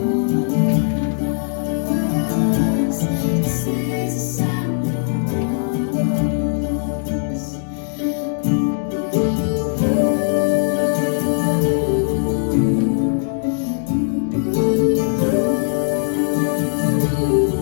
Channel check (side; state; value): right; silent; digital silence